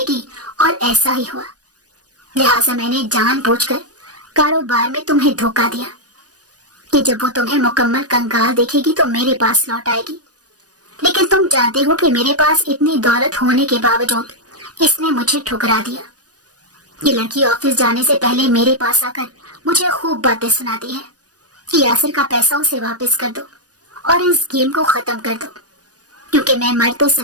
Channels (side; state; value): left; late; 0.68 ms